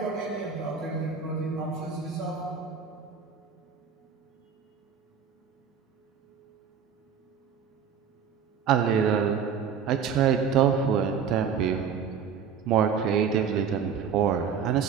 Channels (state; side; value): quieter; left; 6.9 dB